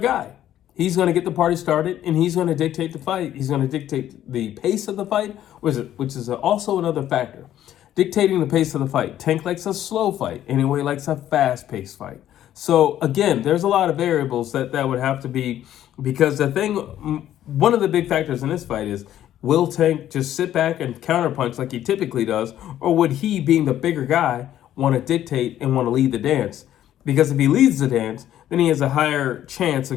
guy. He's going to get the party started, and he's going to dictate the fight. He's going to dictate the pace of the fight, which is also another factor. Dictating the pace of the fight. Tank likes a slow fight. Inoue likes a fast-paced fight. So, again, there's a lot of variables that would have to be, because one of the big factors in this fight is, will Tank just sit back and counterpunch like he typically does, or would he, being the bigger guy, want to dictate and want to lead the dance? Because if he leads the dance, then he has a higher chance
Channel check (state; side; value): quieter; right; 11.9 dB